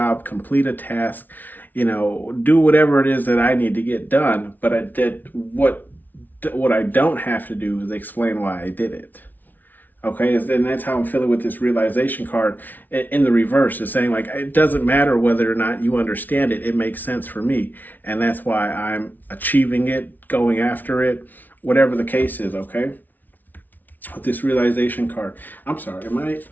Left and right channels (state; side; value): late; right; 0.083 ms